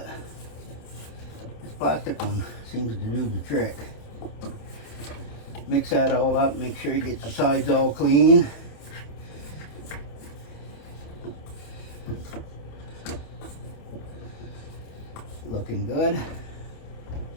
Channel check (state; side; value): late; right; 27 ms